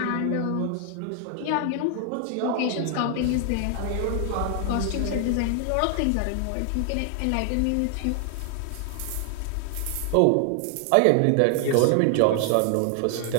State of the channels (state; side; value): different; both; correlation 0.00